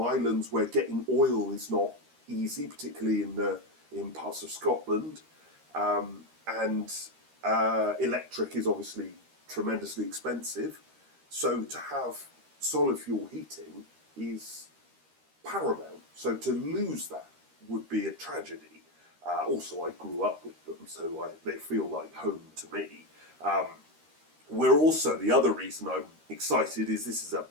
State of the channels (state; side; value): late; left; 13 ms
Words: islands where getting oil is not easy, particularly in parts of Scotland, and electric is obviously tremendously expensive. So to have solid fuel heating is paramount. So to lose that would be a tragedy. Also, I grew up with them, so they feel like home to me. We're also, the other reason I'm excited is this is a